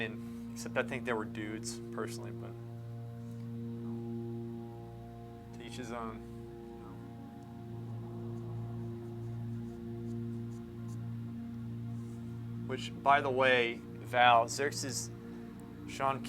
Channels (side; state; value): both; identical; correlation 1.00